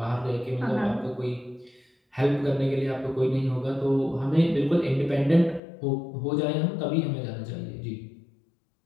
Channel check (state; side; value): drops out; right; at 5.6 s